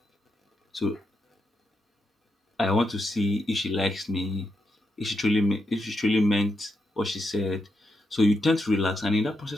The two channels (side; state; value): both; normal; correlation 0.84